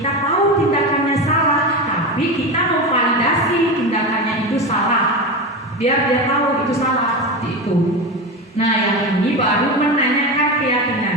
tahu tindakannya salah, tapi kita memvalidasi tindakannya itu salah. Biar dia tahu itu salah, seperti itu. Nah, yang ini baru menanyakan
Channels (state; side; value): normal; both; correlation 0.21